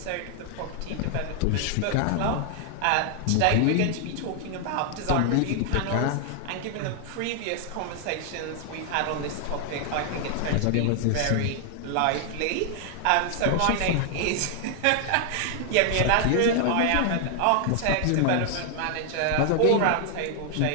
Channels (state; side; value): different; both; correlation 0.00